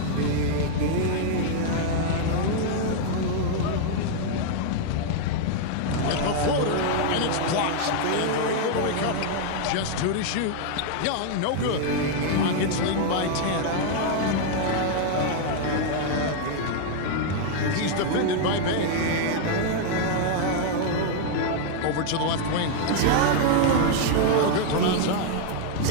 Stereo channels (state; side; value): different; both; correlation -0.01